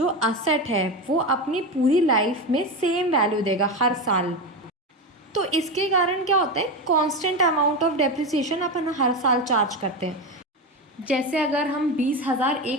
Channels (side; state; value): both; normal; correlation 0.18